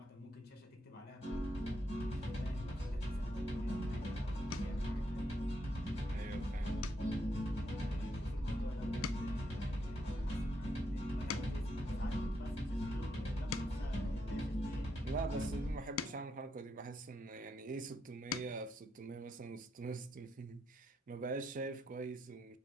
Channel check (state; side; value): normal; both; correlation 0.79